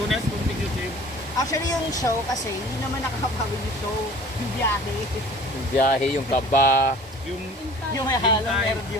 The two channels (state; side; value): normal; both; correlation 0.46